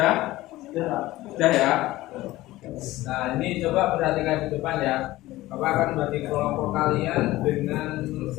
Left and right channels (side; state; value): right; quieter; 17.3 dB